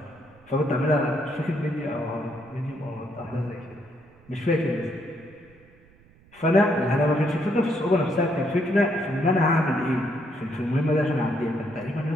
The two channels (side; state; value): right; noise; rumble, 28 dB below the sound